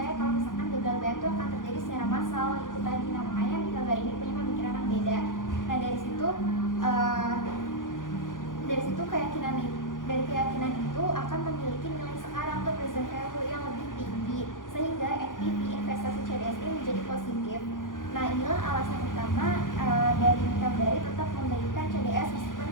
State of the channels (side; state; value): right; late; 0.89 ms